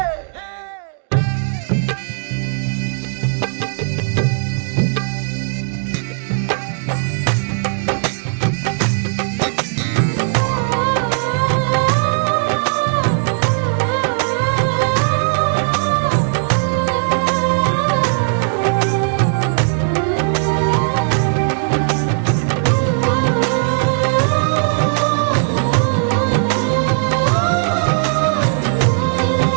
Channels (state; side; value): silent; left; digital silence